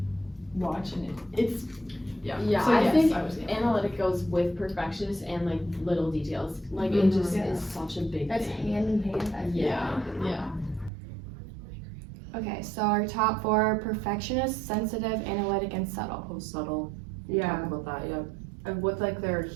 watch, and it's Yeah, So I yes, think I would say analytic goes with perfectionist and like little details. Like it just Yeah. is such a big That's thing. hand in hand. I feel. yeah. Okay, so our top four are perfectionist, sensitive, analytic, and subtle. Oh, subtle. Yeah. Talk about that, yeah. And with like their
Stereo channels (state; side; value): drops out; left; at 10.9 s